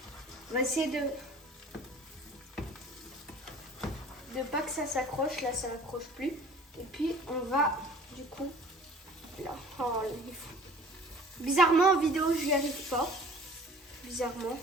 On va essayer de pas que ça s'accroche. Là, ça n'accroche plus. Et puis, on va, du coup, là. Oh, il est fou. Bizarrement, en vidéo, je n'y arrive pas. Bizarrement.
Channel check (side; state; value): both; normal; correlation 0.48